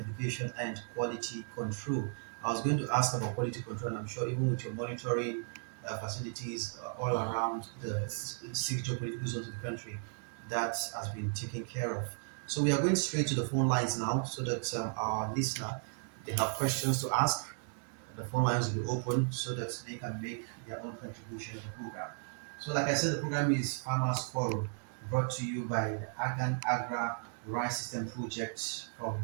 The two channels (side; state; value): left; silent; 54 dB below the other